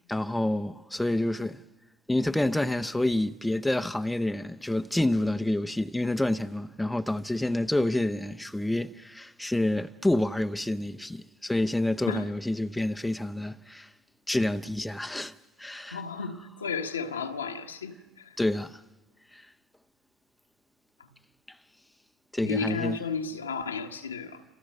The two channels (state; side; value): normal; both; correlation 0.87